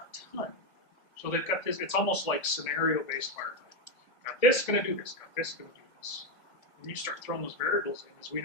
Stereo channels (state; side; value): late; right; 1.9 ms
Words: ton. So they've got this, it's almost like scenario-based firefighting. Got this, gonna do this, got this, gonna do this. When you start throwing those variables in, as we